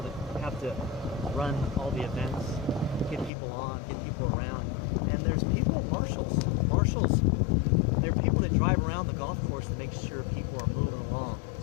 that have to run all the events, get people on, get people around. And there's people, marshals. There are people that drive around the golf course to make sure people are moving along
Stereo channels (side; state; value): right; drops out; at 3.3 s